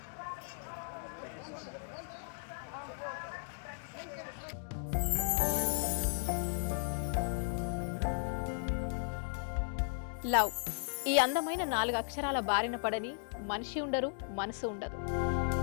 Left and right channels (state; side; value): silent; right; digital silence